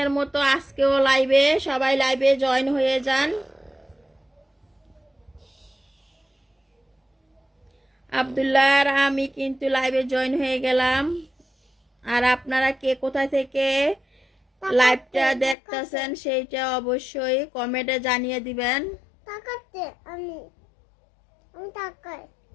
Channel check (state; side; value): drops out; right; at 15.6 s